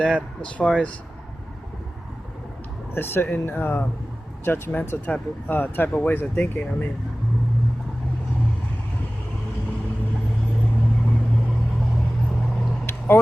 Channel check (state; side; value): normal; both; correlation 0.97